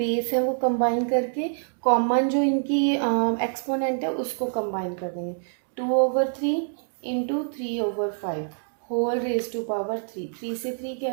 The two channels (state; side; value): silent; left; digital silence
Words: है वो कंबाइन करके कॉमन जो इनकी एक्सपोनेंट है उसको कंबाइन कर देंगे। 2/3 into 3/5 whole raise to power 3, 3 से 3